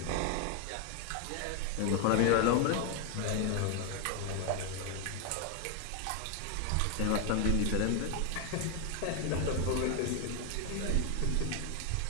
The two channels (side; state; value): both; different; correlation 0.01